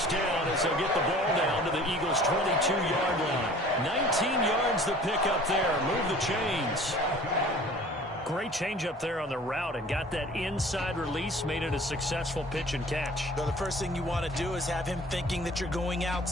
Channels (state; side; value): normal; both; correlation 0.48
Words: down as they'll get the ball down to the Eagles' 22-yard line. 19 yards the pick up there. Move the chains. Great change up there on the route and got that inside release, made it a successful pitch and catch. Well, the first thing you want to do is have him thinking that you're going